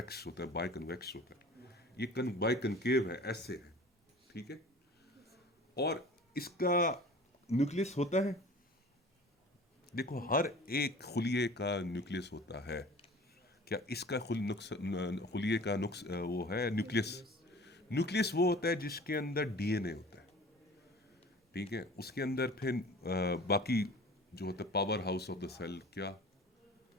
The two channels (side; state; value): both; normal; correlation 0.43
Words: होता है, बाय कन्वेक्स होता है। ये बाय कनकेव है, ऐसे है, ठीक है। और इसका न्यूक्लियस होता है, देखो हर एक खुलिये का न्यूक्लियस होता है। क्या इसका खुलिये का वो है न्यूक्लियस? न्यूक्लियस वो होता है जिसके अंदर डीएनए होता है, ठीक है। उसके अंदर फिर बाकी जो होता है power house of the cell. क्या